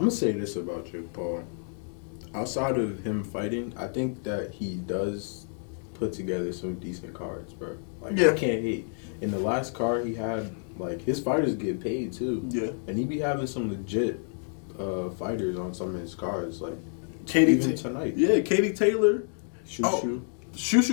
going to say this about Jake Paul. Outside of him fighting, I think that he does put together some decent cards, bro. Like, I can't hate. In the last card he had, like, his fighters get paid, too. Yeah. And he be having some legit fighters on some of his cards, like, Katie tonight. Yeah, Katie Taylor. Shushu,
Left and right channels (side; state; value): right; silent; 59 dB below the other